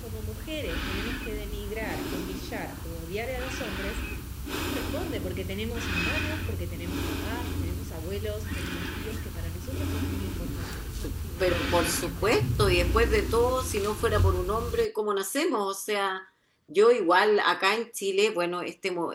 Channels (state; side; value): identical; both; correlation 1.00